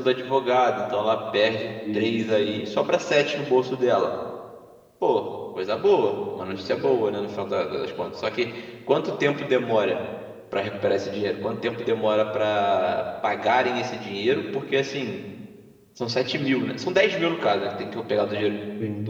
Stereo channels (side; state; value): both; identical; correlation 1.00